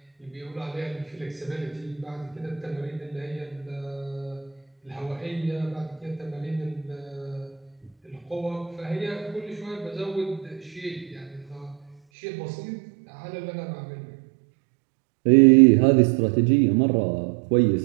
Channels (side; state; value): left; drops out; at 12.0 s